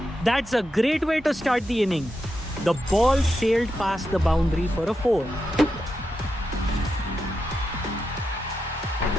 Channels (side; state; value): both; normal; correlation 0.87